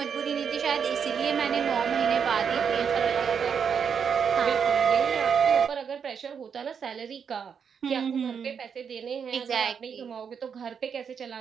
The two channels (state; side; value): quieter; left; 6.9 dB